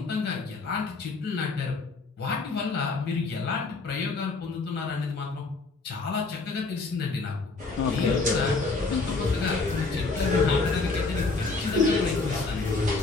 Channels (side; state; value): right; quieter; 3.8 dB